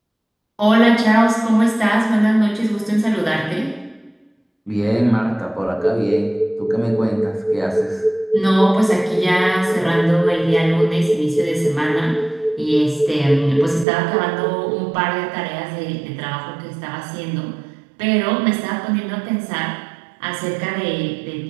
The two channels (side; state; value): left; drops out; at 13.9 s